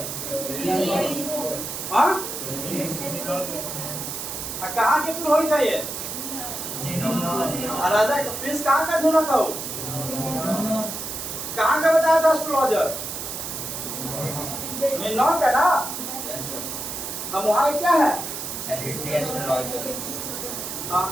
हाँ, कहाँ के पुरोहित है ये, राजा प्रिंस कहाँ का ढूंढा था, वो कहाँ का बताया था एस्ट्रोलॉजर, निर्नौर का ना। हम वहाँ क्या है, हाँ,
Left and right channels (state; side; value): noise; right; hiss, 6 dB below the sound